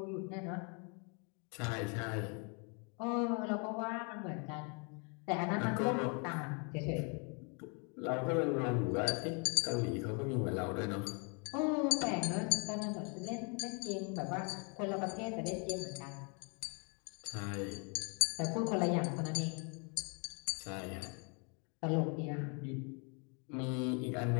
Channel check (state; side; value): quieter; right; 36.1 dB